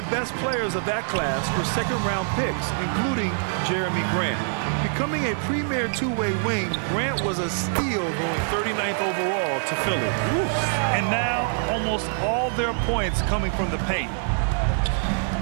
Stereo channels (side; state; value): left; silent; 59 dB below the other